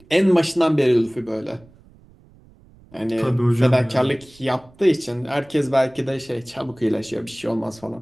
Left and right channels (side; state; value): right; noise; rumble, 27 dB below the sound